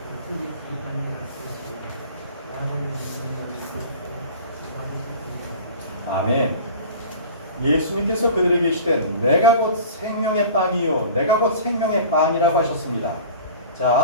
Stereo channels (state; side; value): inverted; both; correlation -0.41